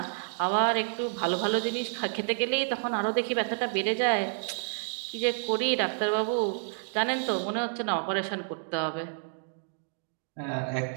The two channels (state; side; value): silent; left; digital silence